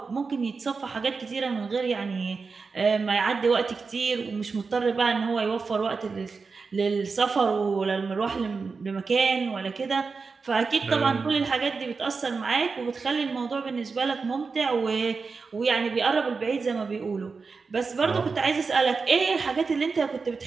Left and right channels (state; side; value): quieter; left; 4.7 dB